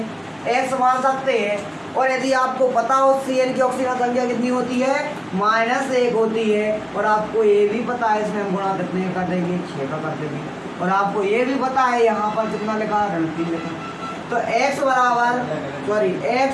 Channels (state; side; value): identical; both; correlation 1.00